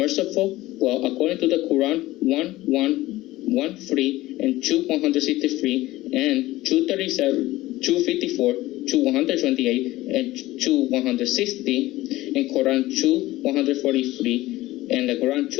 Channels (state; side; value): quieter; right; 17.4 dB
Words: Well, according to the Quran 1:1:1:3 and 2:163 and 2:37, 2:54, 2:128 and 2:160, in Quran 2:143, and the Quran